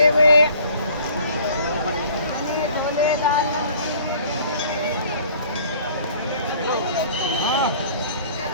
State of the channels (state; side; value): inverted; both; correlation -0.52